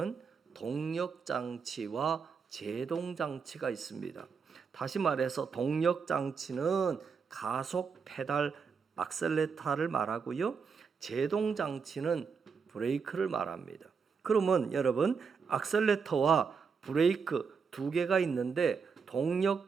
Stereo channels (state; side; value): quieter; left; 5.8 dB